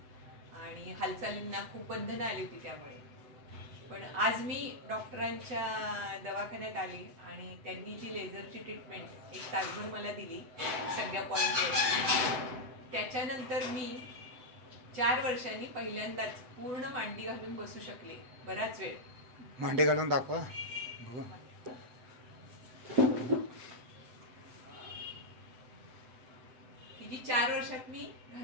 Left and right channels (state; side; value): late; left; 7.9 ms